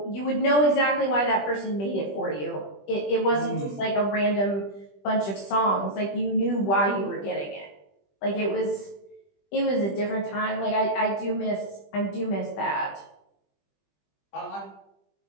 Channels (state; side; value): late; right; 20 ms